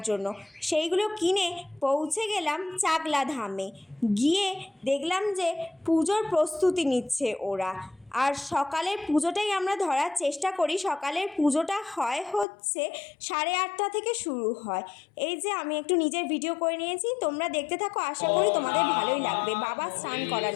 জন্য। সেইগুলো কিনে পৌঁছে গেলাম চাকলা ধামে। গিয়ে দেখলাম যে পুজোর প্রস্তুতি নিচ্ছে ওরা। আর সকালের পুজোটাই আমরা ধরার চেষ্টা করি। সকালের পুজোটা হচ্ছে 8:30 থেকে শুরু হয়। এই যে আমি একটু নিজের ভিডিও করে নিয়েছি, তোমরা দেখতে থাকো, আশা করি তোমাদের ভালোই লাগবে। বাবা স্নান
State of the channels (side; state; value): right; drops out; at 12.5 s